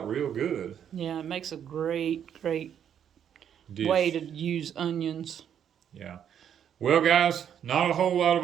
real good. Yeah, it makes a great dish. Way to use onions. Yeah. Well, guys, not a whole lot of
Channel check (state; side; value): quieter; left; 9.0 dB